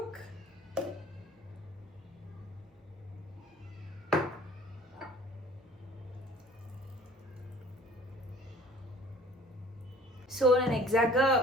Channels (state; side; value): normal; both; correlation 0.50